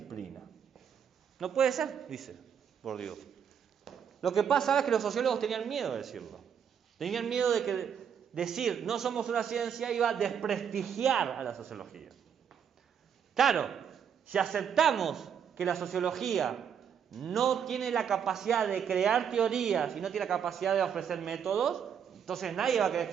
No puede ser, dice Bourdieu. Lo que pasa es que los sociólogos tenían miedo de decirlo. Tenían miedo de que decir no somos una ciencia iba a desprestigiar a la sociología. Claro, si aceptamos que la sociología no tiene la capacidad de crear teorías y no tiene la capacidad de ofrecer métodos, entonces nadie va a querer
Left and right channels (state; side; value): quieter; left; 7.9 dB